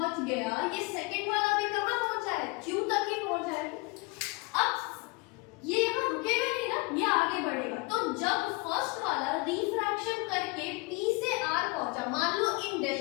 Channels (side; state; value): right; quieter; 26.8 dB